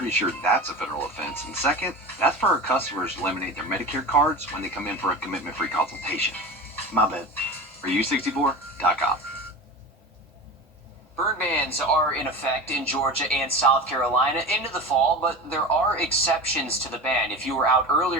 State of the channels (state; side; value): normal; both; correlation 0.30